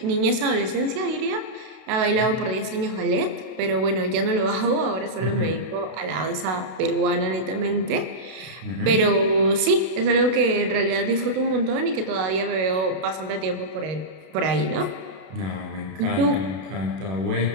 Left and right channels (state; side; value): late; left; 32 ms